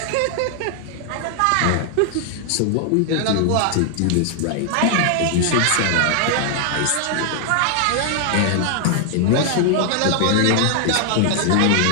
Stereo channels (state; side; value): different; both; correlation 0.00